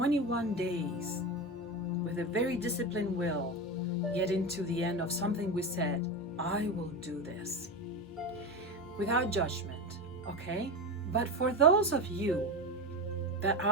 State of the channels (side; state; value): both; normal; correlation 0.20